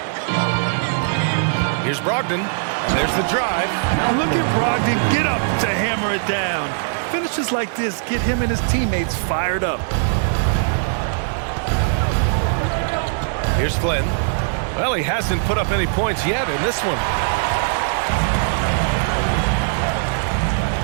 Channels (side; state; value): left; silent; digital silence